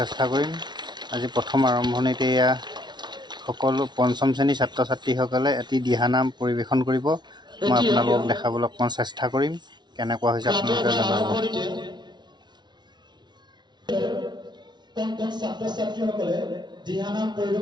কৰিম। আজি প্ৰথম আৰম্ভণিতে এয়া সকলো পঞ্চম শ্ৰেণীৰ ছাত্ৰ ছাত্ৰীসকলে এটি দিহানাম পৰিৱেশন কৰিব। মই আপোনালোকক দেখাবলৈ অকণমান চেষ্টা কৰিম, কেনেকুৱা হৈছে আপোনালোকে জনাব। কোন ছাত্ৰ ছাত্ৰীসকলে দিহানাম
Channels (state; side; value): late; left; 0.21 ms